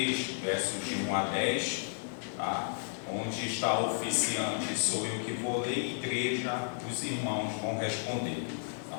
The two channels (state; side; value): silent; right; 56 dB below the other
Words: versos de 1 a 10, tá? Onde está o oficiante, sou eu que vou ler, igreja, os irmãos vão responder, tá